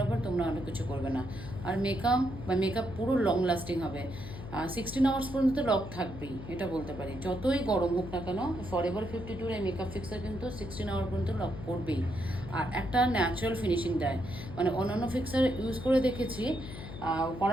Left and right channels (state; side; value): noise; left; hum, 11 dB below the sound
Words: পর তোমরা অনেক কিছু করবে না। আর মেকআপ পুরো লং লাস্টিং হবে, 16 আওয়ার্স পর্যন্ত লক থাকবেই, এটা বলতে পারি। যতই গরম হোক না কেন, ফরএভার 52 এই মেকআপ ফিক্সার কিন্তু 16 আওয়ার পর্যন্ত লক করবেই। আর একটা ন্যাচারাল ফিনিশিং দেয়, মানে অন্যান্য ফিক্সার ইউজ করে দেখেছি,